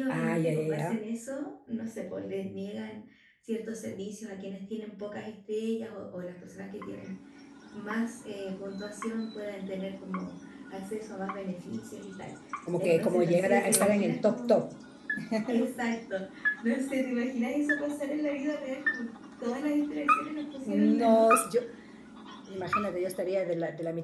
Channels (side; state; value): both; identical; correlation 1.00